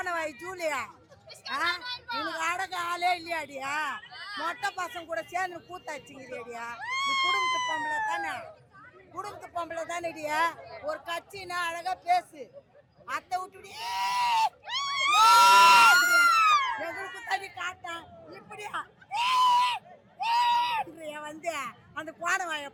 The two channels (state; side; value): identical; both; correlation 1.00